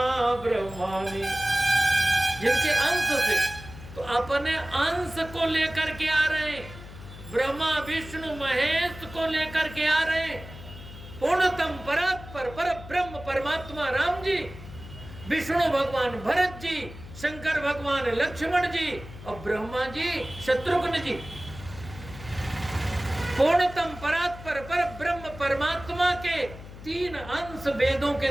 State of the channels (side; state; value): left; noise; hum, 15 dB below the sound